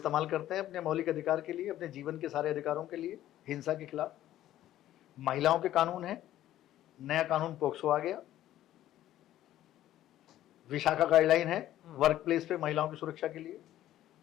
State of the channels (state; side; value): quieter; right; 13.2 dB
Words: करते हैं अपने मौलिक अधिकार के लिए, अपने जीवन के सारे अधिकारों के लिए, हिंसा के खिलाफ। महिलाओं के कानून है, नया कानून पोक्सो आ गया, विशाखा गाइडलाइन है वर्क प्लेस पे महिलाओं की सुरक्षा के लिए,